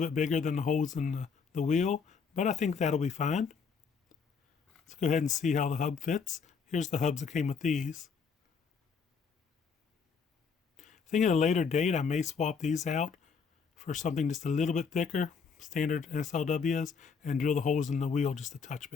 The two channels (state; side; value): quieter; right; 5.6 dB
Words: bigger than the holes in the wheel, but I think that'll be fine. Let's go ahead and see how the hub fits. Here's the hubs that came with these. I think at a later date I may swap these out for something just a little bit thicker, standard SLWs, and drill the holes in the wheel just a touch